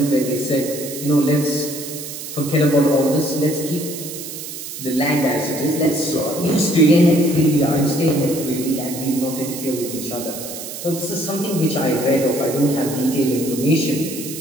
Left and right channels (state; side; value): noise; right; hiss, 9 dB below the sound